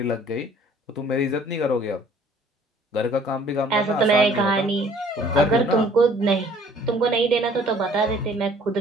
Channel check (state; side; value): normal; both; correlation 0.56